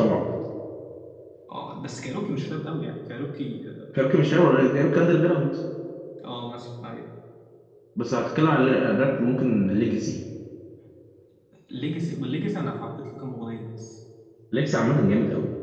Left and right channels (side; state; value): both; identical; correlation 1.00